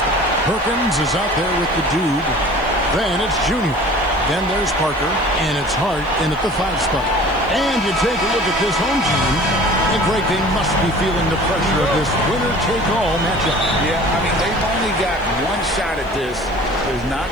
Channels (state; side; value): noise; left; hiss, 28 dB below the sound